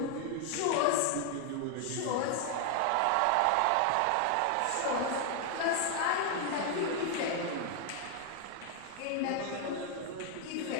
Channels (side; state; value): both; different; correlation 0.00